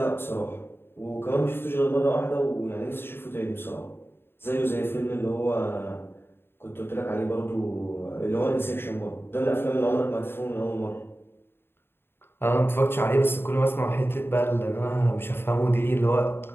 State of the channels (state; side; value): late; right; 0.11 ms